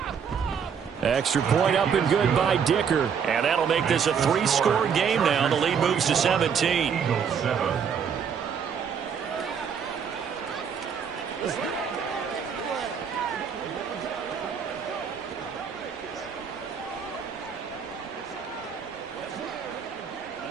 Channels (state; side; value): quieter; left; 7.0 dB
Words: Extra point up and good by Dicker. And that'll make this a 3-score game now. The lead moves to 17. Eagles 7.